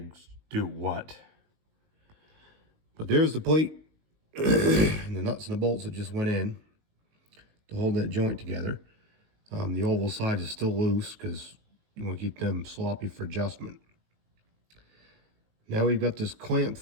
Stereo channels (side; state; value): left; late; 19 ms